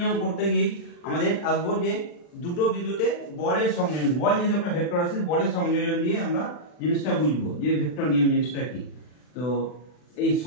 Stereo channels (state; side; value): late; right; 40 ms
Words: করতে গিয়ে আমাদের আসবো যে দুটো বিন্দুতে বলের সংযোজন, বল যেহেতু একটা ভেক্টর আছে, বলের সংযোজন দিয়ে আমরা জিনিসটা বুঝবো যে ভেক্টর নিয়ম জিনিসটা কি। তো এই